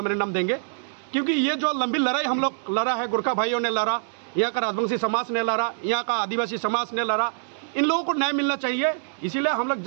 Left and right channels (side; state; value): left; silent; digital silence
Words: देंगे, क्योंकि ये जो लंबी लड़ाई हम लोग लड़ा है, गोरखा भाइयों ने लड़ा, यहाँ का राजवंशी समाज ने लड़ा, यहाँ का आदिवासी समाज ने लड़ा, इन लोगों को न्याय मिलना चाहिए। इसीलिए हम लोग